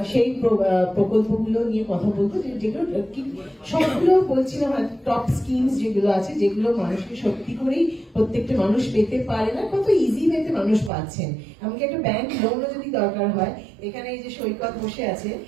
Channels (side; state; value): left; drops out; at 10.9 s